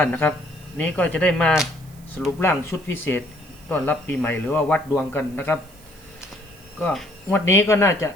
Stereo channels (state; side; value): noise; right; hiss, 25 dB below the sound